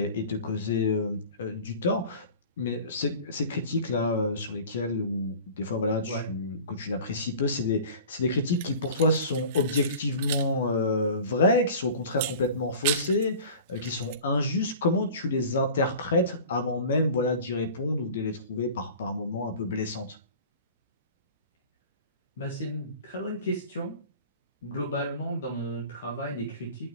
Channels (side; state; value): both; inverted; correlation -0.41